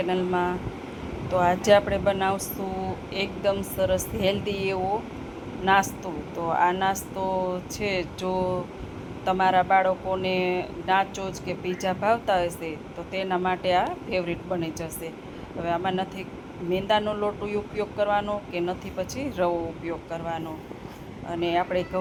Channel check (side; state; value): both; identical; correlation 1.00